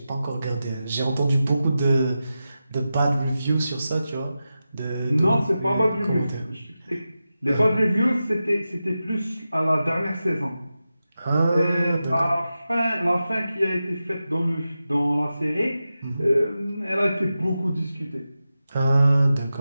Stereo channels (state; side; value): inverted; both; correlation -0.92